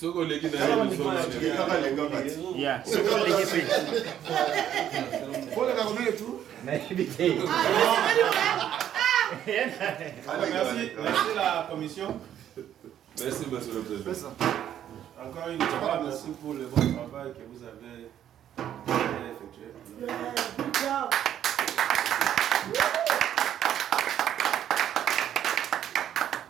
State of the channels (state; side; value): quieter; left; 10.5 dB